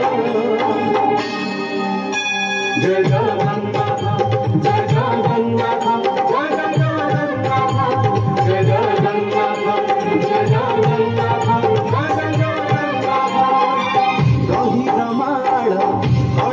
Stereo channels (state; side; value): identical; both; correlation 1.00